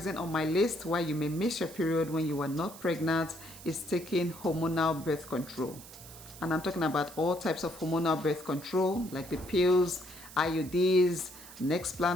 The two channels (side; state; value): right; noise; hiss, 17 dB below the sound